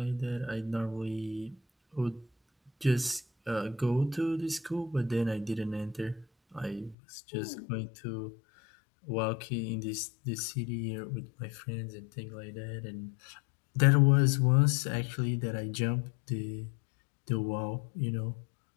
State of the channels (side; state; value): right; drops out; at 7.0 s